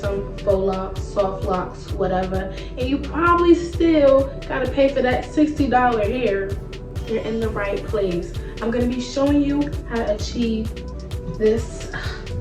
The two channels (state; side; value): identical; both; correlation 1.00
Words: faux locks, soft locks, whatever, and you probably still gotta pay for that $60 hair, you're in the right place. I'm gonna be showing you how to achieve this,